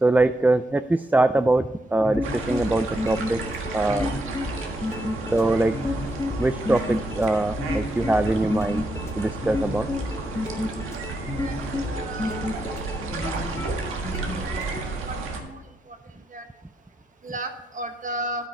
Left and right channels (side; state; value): both; normal; correlation 0.82